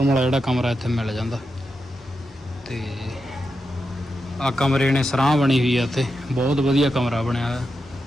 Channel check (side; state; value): both; normal; correlation 0.87